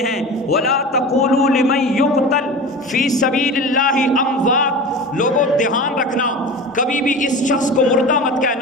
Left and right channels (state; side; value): normal; both; correlation 0.32